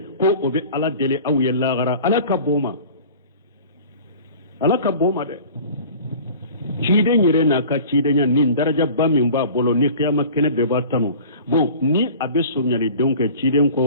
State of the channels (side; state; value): both; inverted; correlation -0.43